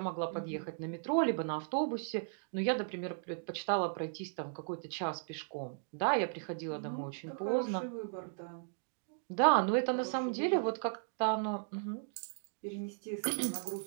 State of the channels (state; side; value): silent; left; digital silence